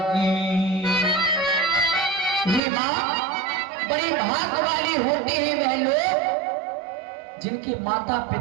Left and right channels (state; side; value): drops out; left; at 2.6 s